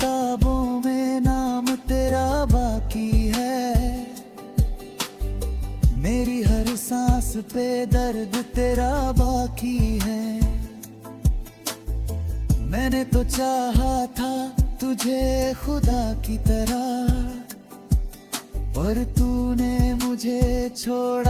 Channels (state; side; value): identical; both; correlation 1.00